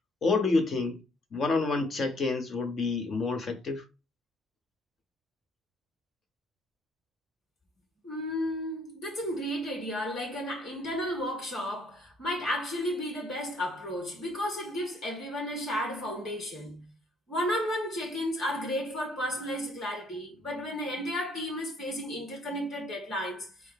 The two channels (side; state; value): both; normal; correlation 0.64